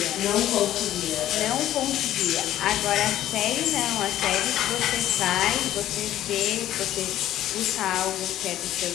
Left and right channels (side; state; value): right; quieter; 13.0 dB